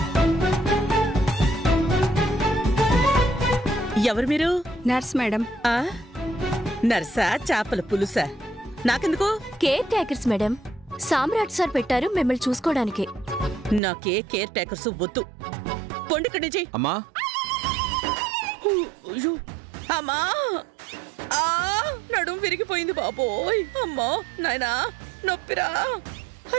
ఎవరు మీరు? Nurse madam. నర్సా? చేపల పులుసా? నాకెందుకు? Care takers madam. Samrat sir పెట్టారు మిమ్మల్ని చూసుకోవడానికి. నాకే కేర్ టేకర్స్ వద్దు. పొండిక్కడి నుంచి. అమ్మా అమ్మా, నడుం విరిగిపోయింది బాబోయ్. అమ్మా నాయనా, నొప్పిరా.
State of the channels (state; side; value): drops out; left; at 13.8 s